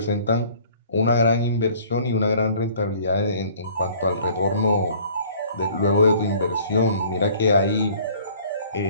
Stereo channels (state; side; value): inverted; both; correlation -0.53